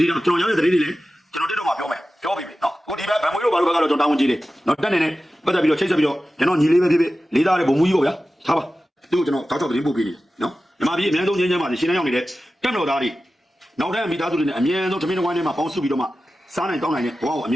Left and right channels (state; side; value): normal; both; correlation 0.94